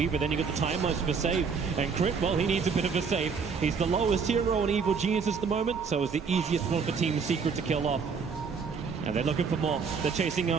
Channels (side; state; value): left; quieter; 5.7 dB